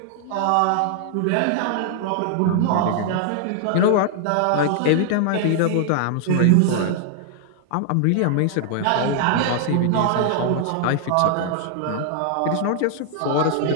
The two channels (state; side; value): different; both; correlation 0.00